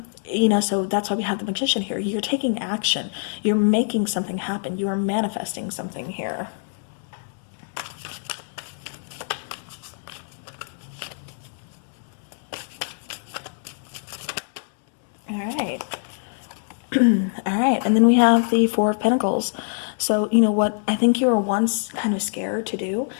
So that's why we have the Magician here. You're taking action. You're making something happen. You are manifesting something here. All right. All right. And then we have the Four of Pentacles. So, what I think you were once kind of scared to do,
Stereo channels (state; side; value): silent; right; digital silence